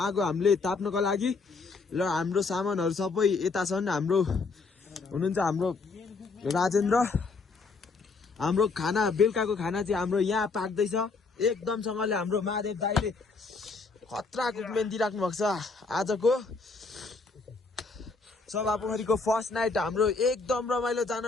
हामीले ताप्नको लागि र हाम्रो सामानहरू सबै यता छन्। हाम्रो हुनुहुन्छ हाम्रो राजेन्द्र। हाम्रो खाना बेलुकाको खाना चाहिँ हाम्रो यहाँ पाक्दैछ एकदमसँगले। हाम्रो महादेव दाइले खतरा कुकमेन दिइराख्नु भएको छ। आजको सभा पोखरीको फर्स्ट नाइट हाम्रो एकदम रमाइलो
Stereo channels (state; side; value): quieter; right; 4.2 dB